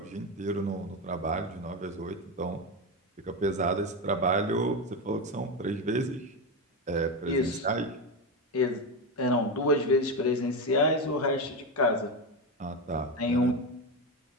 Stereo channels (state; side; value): normal; both; correlation 0.14